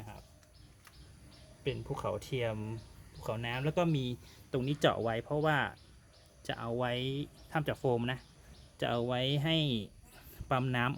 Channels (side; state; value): both; identical; correlation 1.00